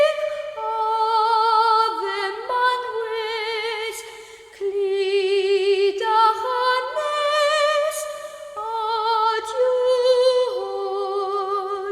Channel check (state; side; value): identical; both; correlation 1.00